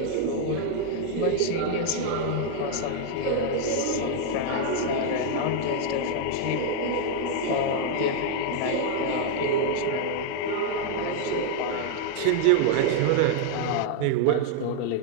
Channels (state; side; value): different; both; correlation 0.00